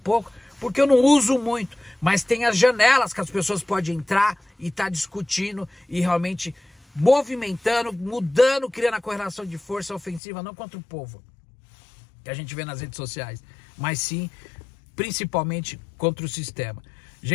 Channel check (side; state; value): right; drops out; at 10.2 s